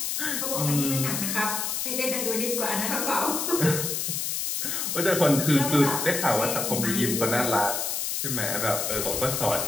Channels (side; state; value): left; noise; hiss, 1 dB below the sound